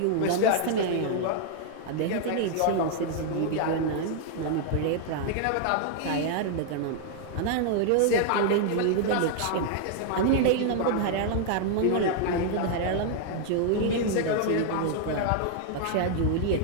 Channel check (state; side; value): different; both; correlation 0.00